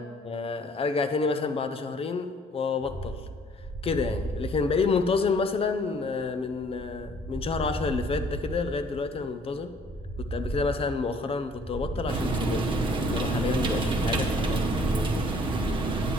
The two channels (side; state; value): both; normal; correlation 0.58